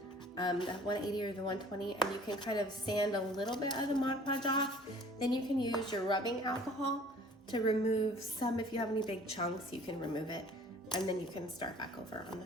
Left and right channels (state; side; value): normal; both; correlation 0.51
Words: the 180 or the 120, and you can kind of sand a little bit of the Mod Podge off. Then you can use your rubbing alcohol to remove some. If you have any big chunks, you can remove it, and then you can start back over on